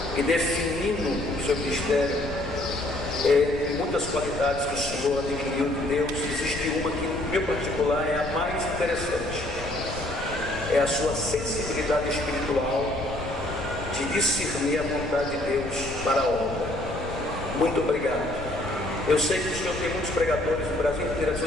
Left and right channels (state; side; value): noise; left; rumble, 10 dB below the sound